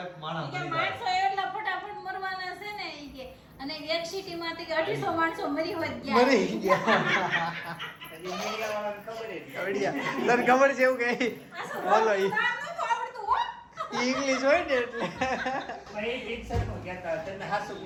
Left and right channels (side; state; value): both; identical; correlation 1.00